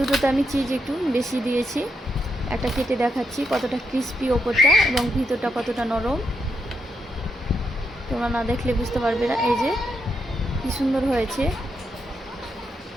আমি চিজ একটু বেশি দিয়েছি। একটা কেটে দেখাচ্ছি কতটা ক্রিস্পি ওপরটা এবং ভিতরটা কতটা নরম, তোমরা না দেখলে বুঝতে পারবে না। এই যে কি সুন্দর হয়েছে,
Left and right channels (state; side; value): normal; both; correlation 0.81